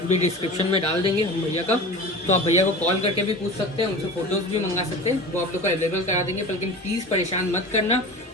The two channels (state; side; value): normal; both; correlation 0.34